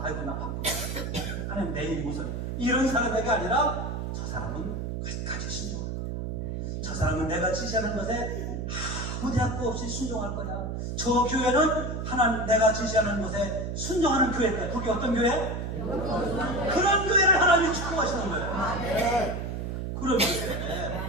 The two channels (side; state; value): right; noise; hum, 4 dB below the sound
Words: 아이고 나 바쁘다. 하나님 내일이 무슨 이런 사람에게 아니라 저 사람은 끝까지 순종할 거야. 저 사람은 내가 지시하는 것에 아무 대학도 없이 순종할 거야. 저 교회는 하나님 내가 지시하는 것에 순종하는 교회일 거야. 그게 어떤 교회? 그런 교회를 하나님이 축복하시는 거예요. 그런